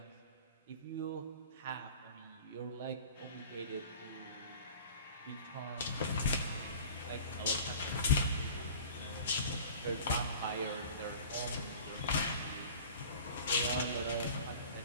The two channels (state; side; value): inverted; both; correlation -0.42